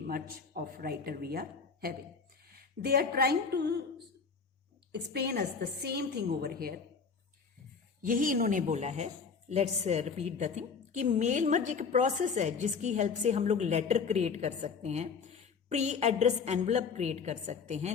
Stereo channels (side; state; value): right; quieter; 5.5 dB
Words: merge of writer we are having. They are trying to explain us the same thing over here. यही इन्होंने बोला है, लेट्स रिपीट द थिंग, कि mail मर्ज एक process है जिसकी help से हम लोग लेटर क्रिएट कर सकते हैं, प्री एड्रेस एनवलप क्रिएट कर सकते हैं,